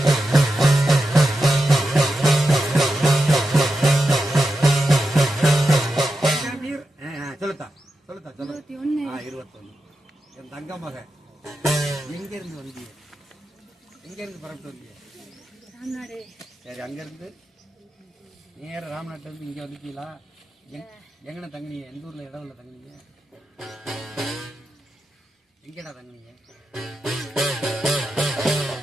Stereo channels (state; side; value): normal; both; correlation 0.89